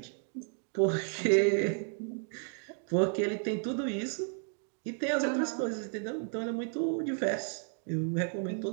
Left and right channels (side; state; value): left; silent; 56 dB below the other